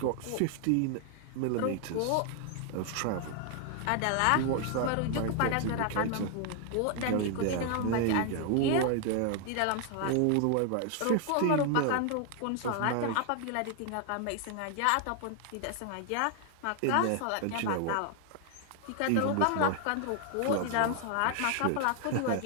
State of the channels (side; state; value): both; different; correlation 0.00